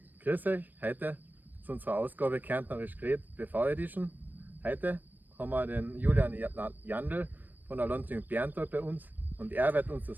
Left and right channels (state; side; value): late; left; 0.089 ms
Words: grüß euch. Heute zu unserer Ausgabe Kärntnerisch geredet, BV Edition. Heute haben wir den Julian Jandl von der Landjugend Berntal bei uns und er wird uns